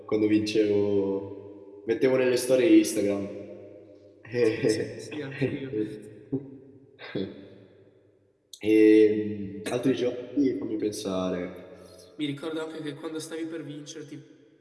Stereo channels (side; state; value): both; identical; correlation 1.00